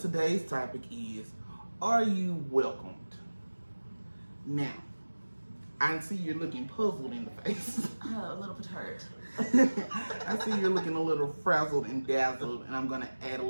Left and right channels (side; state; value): both; inverted; correlation -1.00